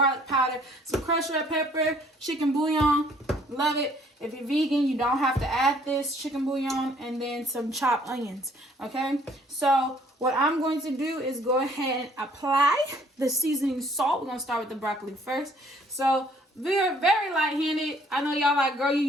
powder, some crushed red pepper, chicken bouillon. Love it. If you're vegan, you don't have to add this chicken bouillon, and then some chopped onions. Okay, so what I'm going to do is go ahead and apply the seasoning salt. We're going to start with the broccoli first. So we're very light-handed. I know y'all like, girl, you're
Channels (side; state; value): both; normal; correlation 0.61